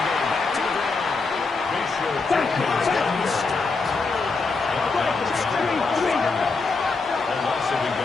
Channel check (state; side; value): quieter; right; 4.1 dB